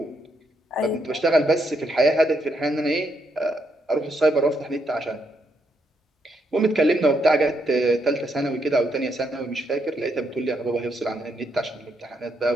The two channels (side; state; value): both; normal; correlation 0.77